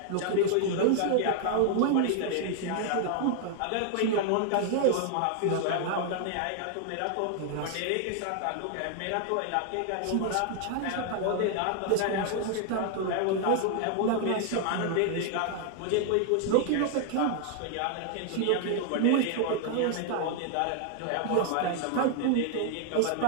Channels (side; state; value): both; different; correlation 0.00